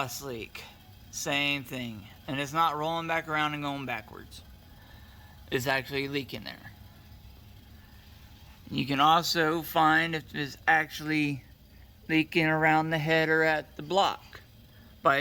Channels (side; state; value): both; identical; correlation 1.00